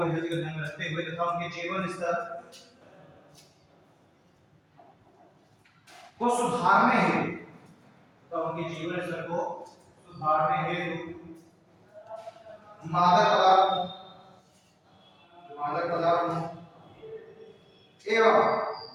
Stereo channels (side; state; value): both; identical; correlation 1.00